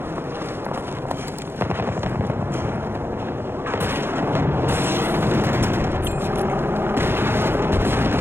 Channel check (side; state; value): left; late; 0.11 ms